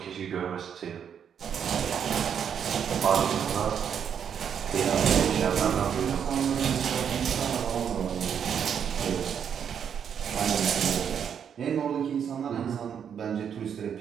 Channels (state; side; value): quieter; left; 8.0 dB